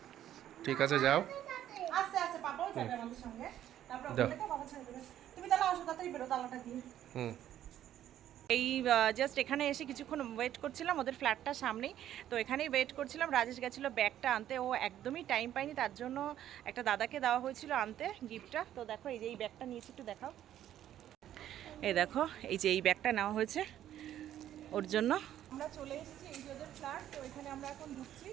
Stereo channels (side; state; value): left; quieter; 11.6 dB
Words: ঠিক আছে যাও। আস্তে আস্তে, পাপাও যাবে আমাদের সঙ্গে, তারপর ওখানে বাবা ছেড়ে দেবে। তুমি তাহলে আসো, তাড়াতাড়ি বেরো, তালাটা দিয়ে। এই জাস্ট এখানে এসে কিছুক্ষণ ওয়েট করছিলাম, ওদের ফ্ল্যাটটার সামনেই, তো এখানেই ওয়েট করছিলাম। রাজেশ গেছিলো ব্যাগটা আনতে, ও একদমই টাইম পায়নি, তার জন্য একটা দাদাকে দেওয়া হয়েছিল আনতে গিফটটা। তো দেখো এই যে এই ব্যাগটা নিয়েছি, একটু দেখাও। এই দেখো, এই যে এই ব্যাগটা নেওয়া হয়েছে ওর জন্য। আমরা চলে এসেছি, এই যে ওদের ফ্ল্যাট, তো এখানে আমরা এখন ঢুকছি।